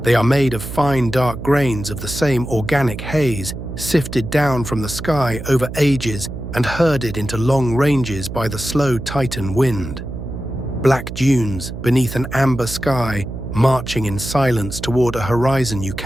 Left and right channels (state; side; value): noise; right; hum, 9 dB below the sound